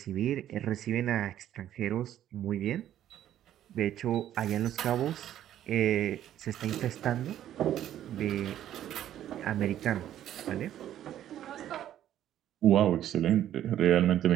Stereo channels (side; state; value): left; quieter; 11.6 dB